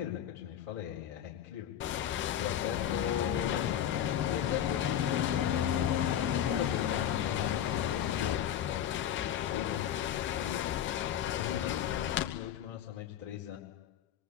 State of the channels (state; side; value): quieter; right; 10.3 dB